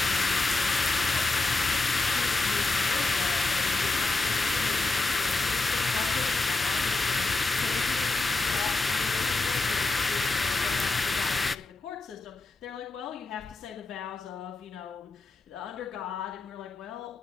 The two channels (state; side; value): quieter; right; 3.5 dB